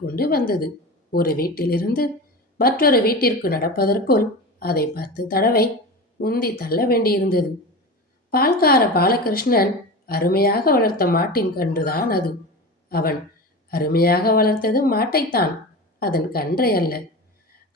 கொண்டு வந்தது. ஒரு வீட்டிலிருந்து மற்றொரு வீட்டிற்கு நடப்பதற்குள் அதை 10 தடவை உந்தி தள்ள வேண்டியிருந்தது. பால்கார பாலகிருஷ்ணன் அருமையாக வளர்த்த மாட்டின் கன்றுதான் அது. அவன் அருமையாக வளர்த்தது மாட்டைத்தான், அதன் கன்றை அல்ல.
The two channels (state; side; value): normal; both; correlation 0.28